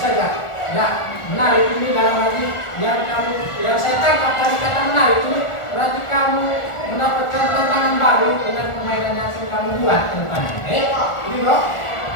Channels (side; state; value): right; late; 1.4 ms